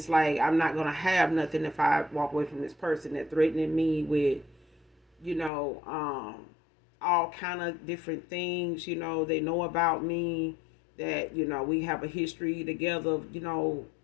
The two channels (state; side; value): drops out; right; at 5.5 s